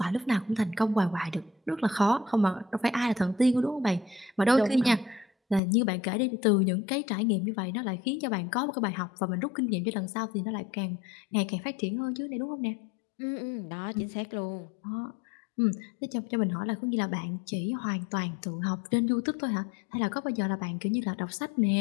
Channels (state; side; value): drops out; right; at 5.6 s